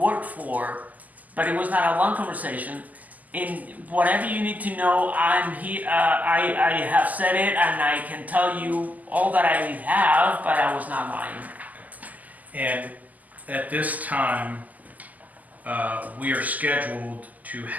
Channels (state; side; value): late; left; 0.079 ms